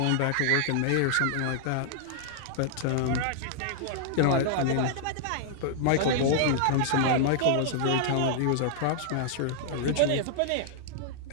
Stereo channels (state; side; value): different; both; correlation -0.01